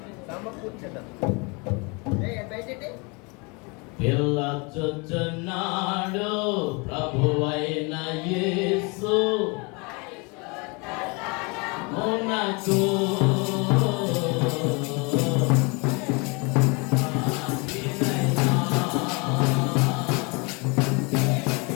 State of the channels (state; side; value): quieter; right; 30.0 dB